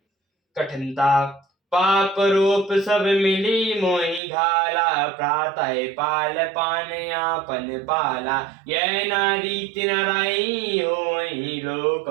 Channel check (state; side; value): drops out; left; at 4.2 s